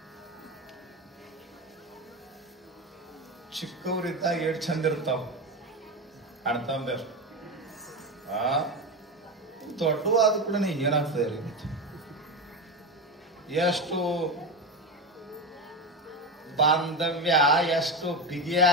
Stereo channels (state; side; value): normal; both; correlation 0.18